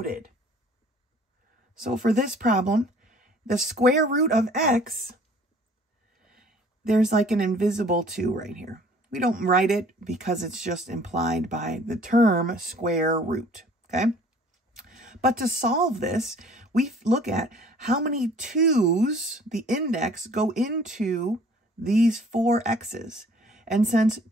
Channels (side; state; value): both; normal; correlation 0.53